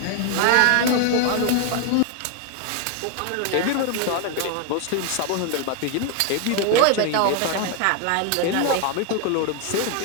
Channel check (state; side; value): different; both; correlation 0.01